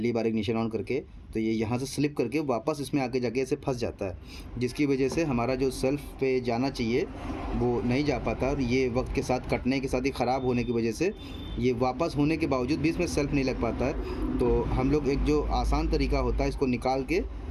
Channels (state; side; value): identical; both; correlation 1.00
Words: बार इग्निशन ऑन करके, तो ये यहाँ से स्लिप करके वापस इसमें आके जाके ऐसे फंस जाता है, जिसकी वजह से हमारा जो सेल्फ पे जाना चाहिए वो नहीं जा पाता। और ये वक्त के साथ कटने के साथ ही ख़राब होने की वजह से ये वापस होने के बावजूद भी इसमें सेल्फ नहीं लग पाता है। तो हम लोग एक जो आसान तरीका होता है, इसको निकाल के